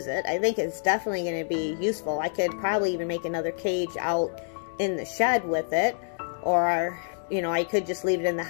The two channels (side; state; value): right; silent; 60 dB below the other